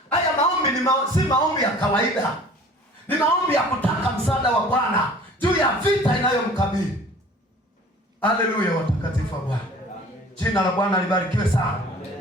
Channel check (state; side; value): normal; both; correlation 0.47